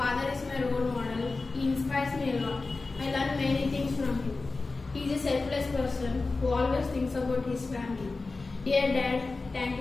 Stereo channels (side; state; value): right; quieter; 3.7 dB